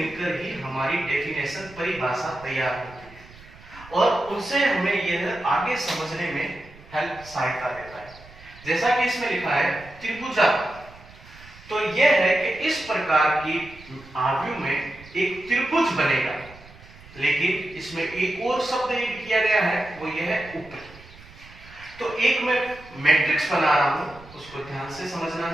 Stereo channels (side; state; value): right; noise; rumble, 21 dB below the sound